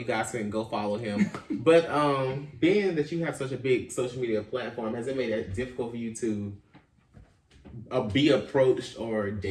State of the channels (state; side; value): identical; both; correlation 1.00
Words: guys can go follow him. But being that you have such a big social media platform, has it made it difficult for you to be approached or